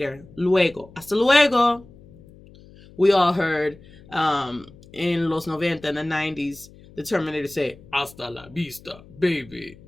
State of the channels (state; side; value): noise; left; hum, 23 dB below the sound